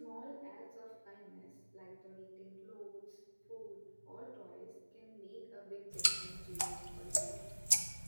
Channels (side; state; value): both; inverted; correlation -1.00